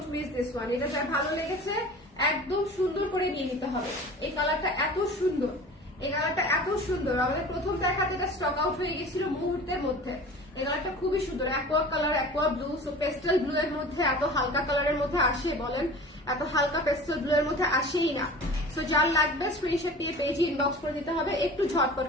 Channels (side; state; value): both; normal; correlation 0.40